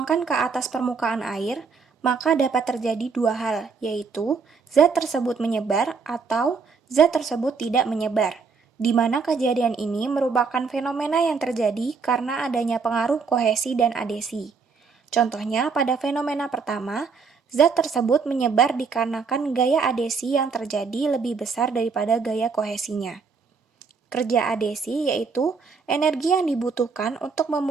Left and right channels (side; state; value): left; quieter; 5.1 dB